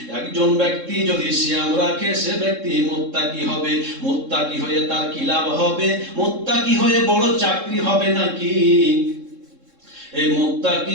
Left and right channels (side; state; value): left; late; 3.6 ms